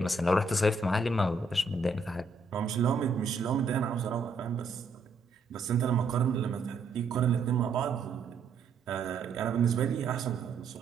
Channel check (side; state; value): left; quieter; 3.8 dB